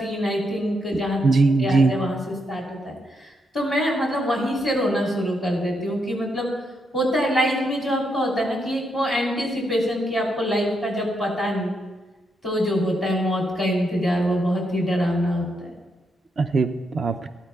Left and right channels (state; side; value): normal; both; correlation 0.80